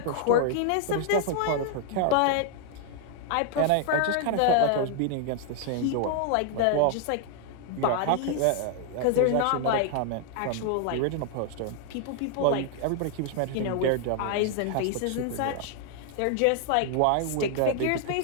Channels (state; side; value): different; both; correlation 0.00